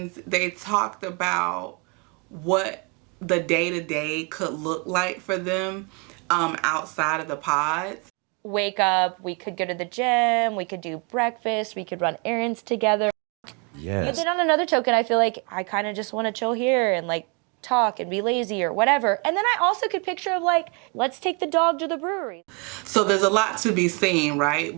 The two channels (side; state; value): left; quieter; 32.6 dB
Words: they talked about what the day-to-day could look like for them outside of the pods. Wake up, we could go to the gym, we could do breakfast, we could run errands together. Yes. But then on another token, I feel like I kind of just want to chill here and like talk and be lazy or whatever. And then I also could picture of like, let's take the dog to the brewery. So there's a lot to be seen,